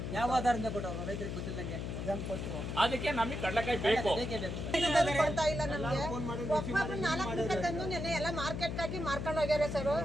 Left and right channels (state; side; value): noise; left; hum, 4 dB below the sound